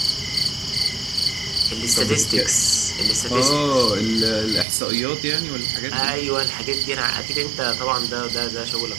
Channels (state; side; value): drops out; left; at 4.7 s